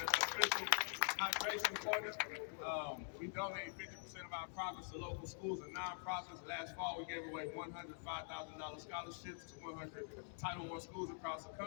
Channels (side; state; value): right; silent; digital silence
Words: Hydration partner. We donate 50% of our profits to local schools and nonprofits. Last fall, we gave away $105,000 scholarships to 100 Title I schools across the